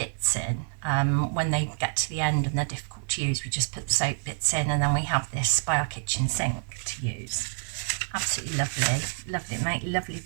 in when they get to the end and they're difficult to use. We just put the soap bits in, and then we have this by our kitchen sink to use. Absolutely lovely, make lovely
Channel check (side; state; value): left; silent; 60 dB below the other